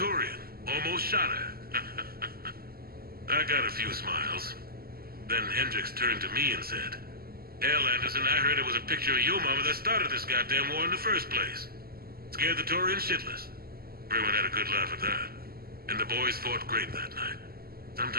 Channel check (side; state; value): left; late; 0.44 ms